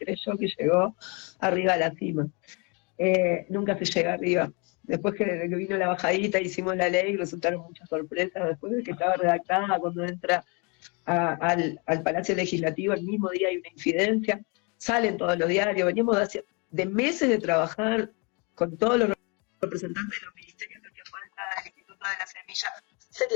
que llegó arriba a la cima. Nunca se llega arriba. Después que vino la bajadita, hicimos la ley, resultaron muchas sorpresas. Después de que estaba redactada, cuando entra al Palacio Legislativo, el mismo día hay una incidencia, salen todos los diarios. Veníamos de meses de trabajar con todos los representantes de los ministerios que hacía falta, del Instituto de la Semilla,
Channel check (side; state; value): right; quieter; 32.0 dB